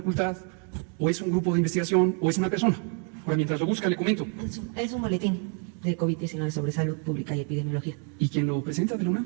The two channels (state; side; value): quieter; left; 39.0 dB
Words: ¿O es un grupo de investigación? ¿O es una persona? Ahora, mientras lo busca, le comento. Es un boletín de COVID-19 sobre salud pública y epidemiología. ¿Y quién lo presenta de la UNAM?